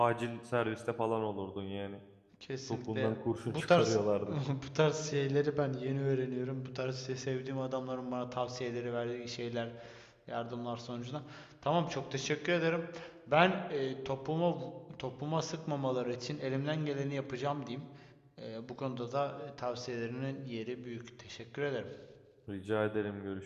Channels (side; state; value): both; identical; correlation 1.00